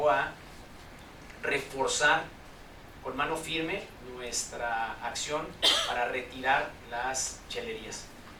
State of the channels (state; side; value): identical; both; correlation 1.00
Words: a reforzar con mano firme nuestra acción para retirar las chelerías.